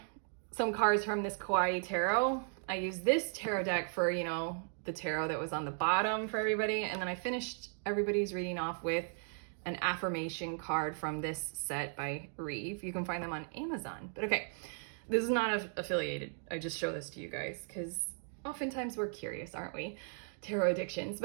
some cards from this Kawaii Tarot. I used this tarot deck for, you know, the tarot that was on the bottom for everybody, and then I finished everybody's reading off with an affirmation card from this set by Reeve. You can find them on Amazon. But okay, this is not affiliated. I just show this to you guys because oftentimes we're curious, aren't we? Tarot addictions.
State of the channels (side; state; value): left; silent; 54 dB below the other